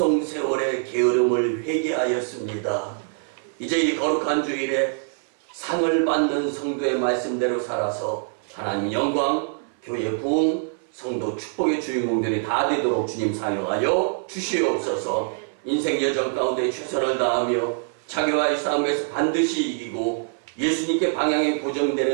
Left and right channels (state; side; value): silent; left; 62 dB below the other